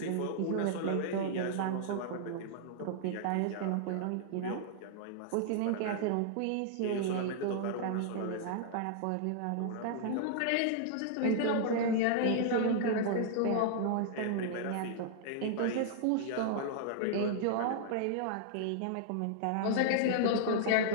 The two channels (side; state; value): both; different; correlation -0.01